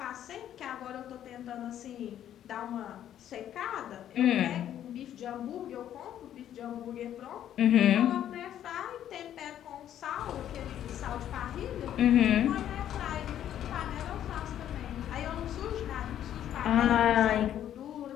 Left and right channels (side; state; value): right; quieter; 10.9 dB